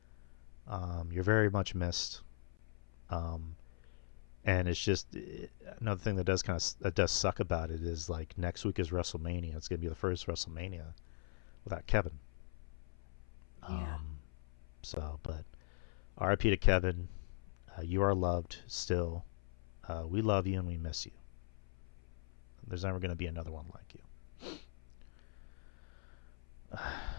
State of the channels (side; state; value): right; silent; 51 dB below the other